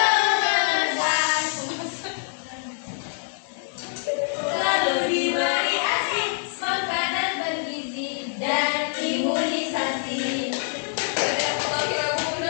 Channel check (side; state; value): right; silent; digital silence